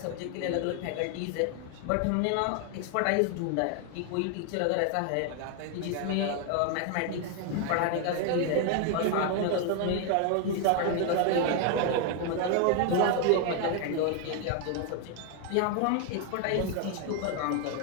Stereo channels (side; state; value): both; different; correlation 0.01